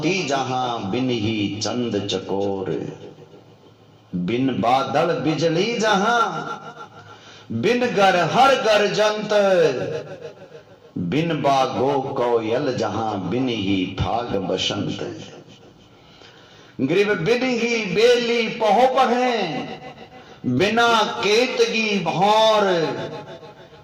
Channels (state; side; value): identical; both; correlation 1.00